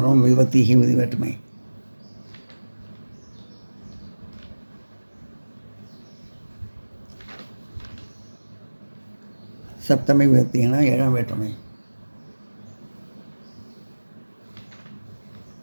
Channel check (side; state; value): both; inverted; correlation -1.00